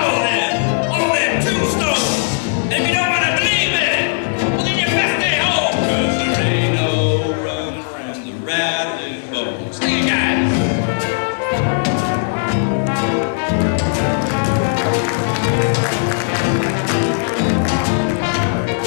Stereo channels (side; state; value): right; silent; 62 dB below the other